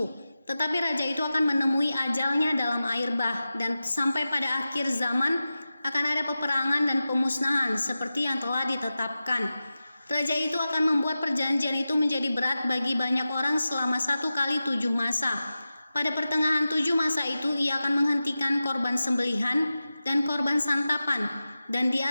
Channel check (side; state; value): both; inverted; correlation -0.94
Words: Tetapi raja itu akan menemui ajalnya dalam air bah, dan sampai pada akhir zaman akan ada peperangan dan pemusnahan seperti yang telah ditetapkan. Raja itu akan membuat perjanjian itu menjadi berat bagi banyak orang selama 1 kali 7 masa. Pada pertengahan 7 masa itu ia akan menghentikan korban sembelihan dan korban santapan, dan di